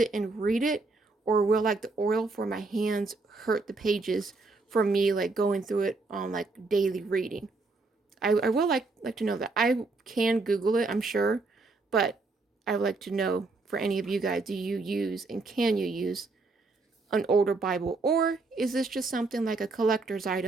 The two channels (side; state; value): left; quieter; 3.6 dB